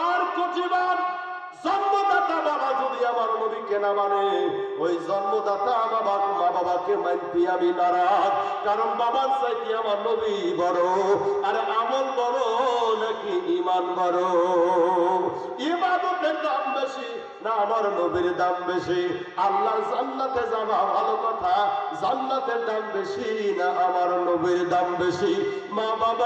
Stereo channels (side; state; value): both; identical; correlation 1.00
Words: কোটি বার। জন্মদাতা বাবা যদি আমার নবীকে না মানে, ওই জন্মদাতা মা বাবাকে মানতে আমি নারাজ। কারণ বাবার চাইতে আমার নবী বড়। আর আমল বড় নাকি ঈমান বড়? ইবাদতের দাম বেশি না আমার নবীর দাম বেশি? আল্লাহর জান্নাতে যাওয়া ভালো কথা, জান্নাতের দাম বেশি না আমার নবীর দাম বেশি? মা